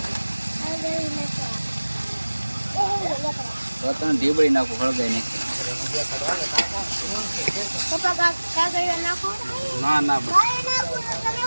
તને ઢીબળી નાખું, હળગાઈ નહીં. ના ના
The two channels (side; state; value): both; inverted; correlation -1.00